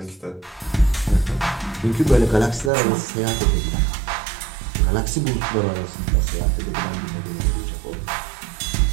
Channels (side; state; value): left; drops out; at 2.7 s